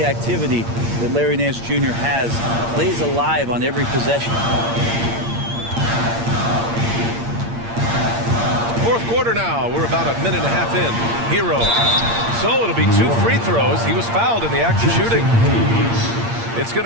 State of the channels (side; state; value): left; late; 8.7 ms